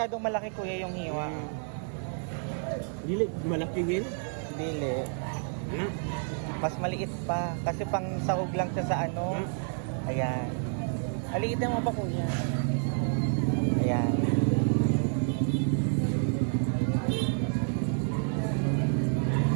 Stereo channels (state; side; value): silent; left; 58 dB below the other